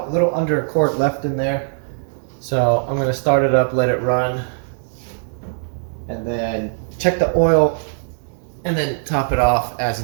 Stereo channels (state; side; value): silent; left; digital silence